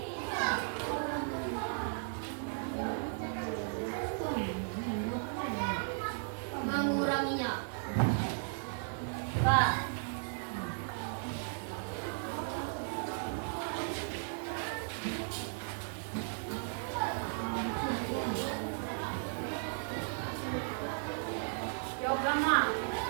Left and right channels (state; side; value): silent; left; digital silence